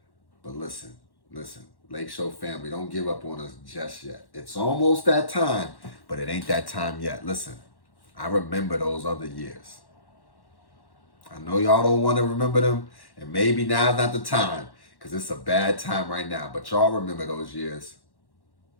But listen, LakeShow family, don't give up on us just yet. It's almost that time, but it ain't that time yet. Listen, I remember those other years. I know y'all don't want to remember them, and maybe now's not the time, because it's a bad time right now, but y'all remember those years.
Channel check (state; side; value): late; right; 1.1 ms